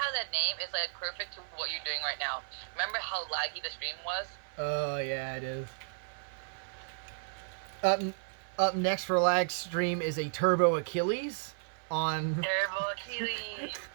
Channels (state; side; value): silent; left; 55 dB below the other